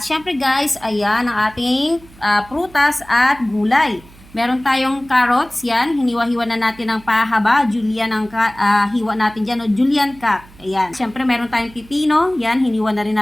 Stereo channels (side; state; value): right; noise; hum, 23 dB below the sound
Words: syempre guys, ayan ang ating prutas at gulay. Meron tayong carrots, yan. Hiniwa-hiwa na natin ng pahaba. Julian ang hiwa natin dyan, o julian cut. Ayan. Siyempre, meron tayong pipino. Yan, hiniwa na rin